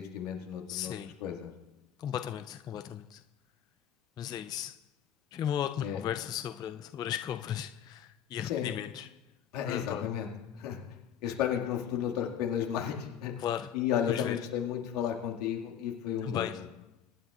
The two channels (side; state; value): right; quieter; 9.2 dB